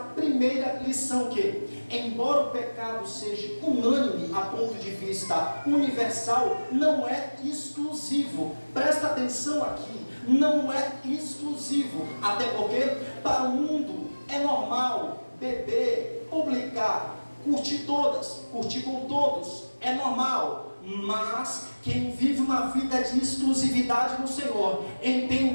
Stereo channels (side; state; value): both; inverted; correlation -1.00